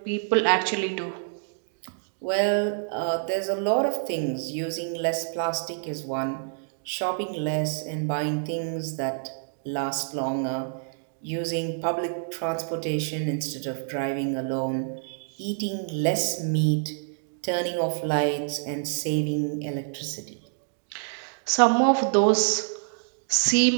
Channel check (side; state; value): left; silent; digital silence